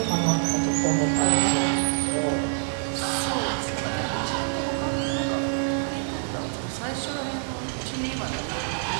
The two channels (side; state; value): left; silent; 61 dB below the other